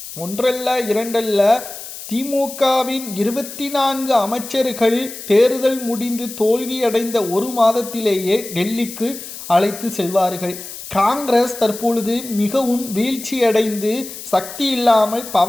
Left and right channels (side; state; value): left; noise; hiss, 12 dB below the sound